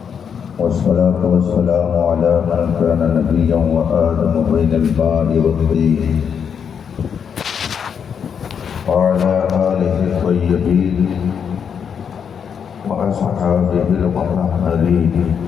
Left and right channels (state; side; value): quieter; right; 7.3 dB